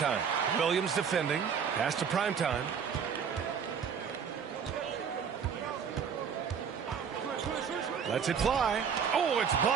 Williams defending. Pass to Primetime. Lets it fly. Oh, it's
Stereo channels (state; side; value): quieter; left; 7.0 dB